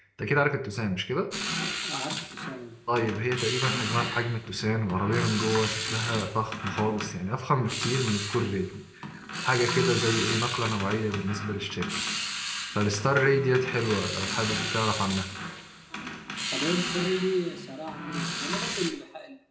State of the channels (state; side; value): identical; both; correlation 1.00